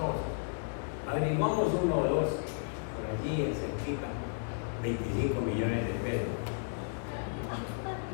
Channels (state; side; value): silent; right; digital silence